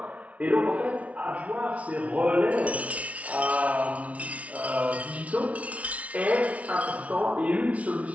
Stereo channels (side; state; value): left; late; 0.066 ms